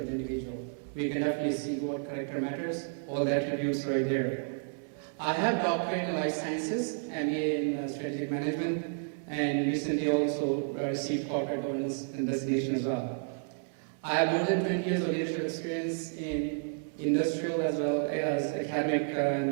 the individual. We can definitely see what character matters, all the attributes right there. I have doctorate in life sciences, MBA in strategic management, and recently also received corporate governance and designation as well. I have more than 20 years of leadership experience in industrial as well as academic and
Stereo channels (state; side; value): silent; left; 57 dB below the other